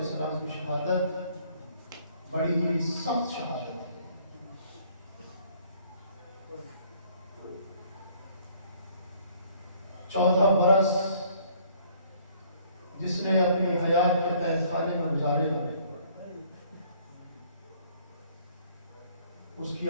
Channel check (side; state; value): both; inverted; correlation -0.60